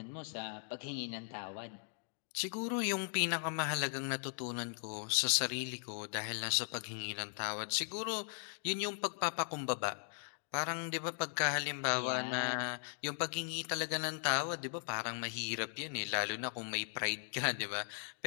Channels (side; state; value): right; silent; digital silence